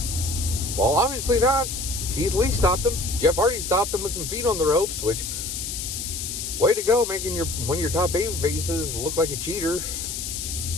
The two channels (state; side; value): noise; left; hiss, 5 dB below the sound